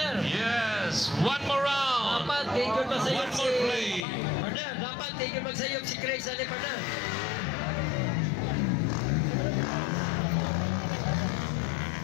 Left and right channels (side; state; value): right; drops out; at 4.0 s